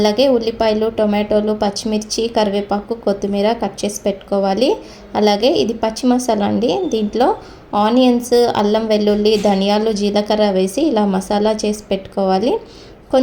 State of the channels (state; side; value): identical; both; correlation 1.00